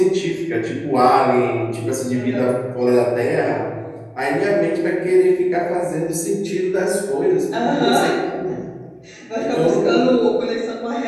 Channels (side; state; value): both; identical; correlation 1.00